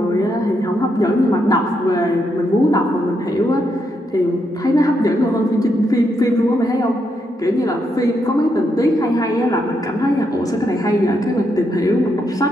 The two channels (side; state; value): both; normal; correlation 0.80